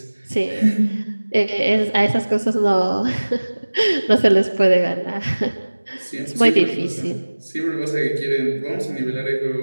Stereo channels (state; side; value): inverted; both; correlation -1.00